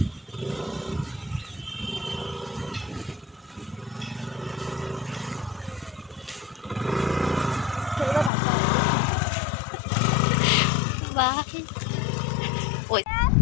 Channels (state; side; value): drops out; right; at 8.3 s